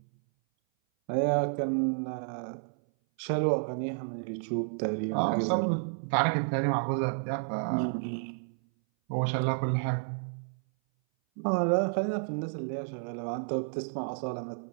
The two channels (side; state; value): left; silent; 57 dB below the other